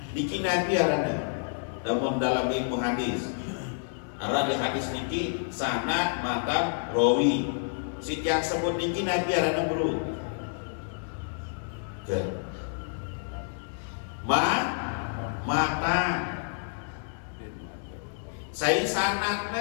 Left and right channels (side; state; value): right; silent; digital silence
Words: Niki Nabi arana namun dalam ilmu hadis arana hadis niki sanad matan rawi si yang sebut niki Nabi arana bro mata saya